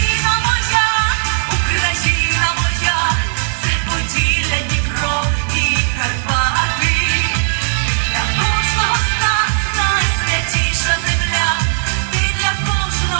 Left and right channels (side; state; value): left; silent; digital silence